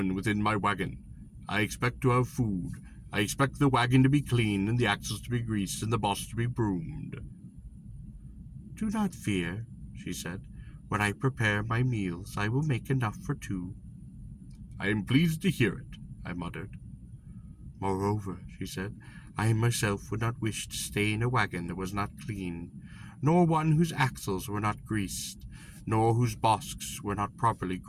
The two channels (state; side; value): identical; both; correlation 1.00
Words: within my wagon. I expect to have food. I expect the wagon to be clean, and the axles to be greased, and the boss to be broomed. Do not fear, she said. When I prepare my meals, I will make enough for two. I am pleased to hear it, I muttered. Moreover, she said, I myself would not wish to stay in a wagon that was not clean, nor one whose axles were not greased, nor whose bosks were not properly